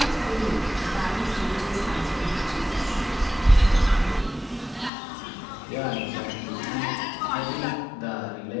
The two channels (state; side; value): drops out; right; at 4.9 s